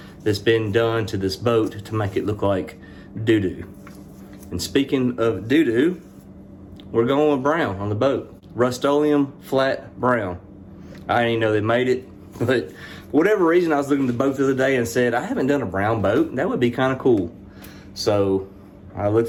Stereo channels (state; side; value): identical; both; correlation 1.00